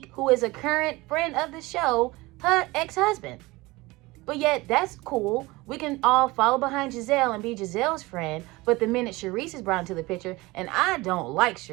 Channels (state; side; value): quieter; left; 21.6 dB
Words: who is a current friend of the show, her ex-husband. But yet, that's cool. We can all follow behind Gizelle and be Gizelle's friend. But the minute Sharice is brought into the picture, and I don't like